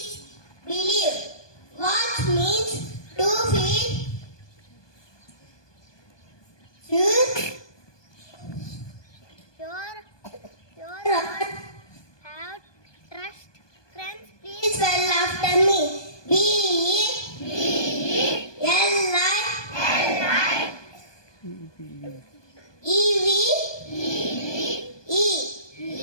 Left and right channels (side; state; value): right; late; 1.2 ms